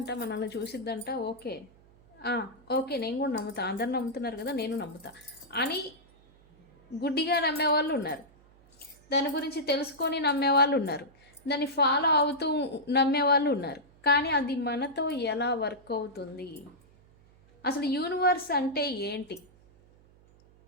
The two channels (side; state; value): right; noise; hum, 28 dB below the sound